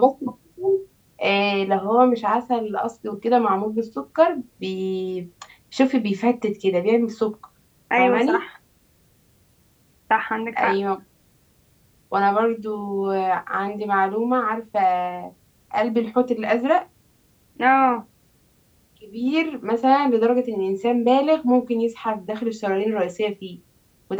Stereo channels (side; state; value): both; identical; correlation 1.00